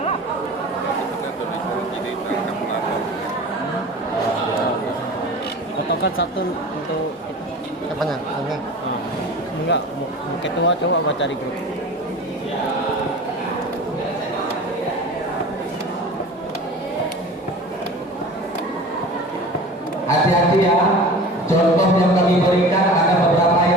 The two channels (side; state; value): both; normal; correlation 0.38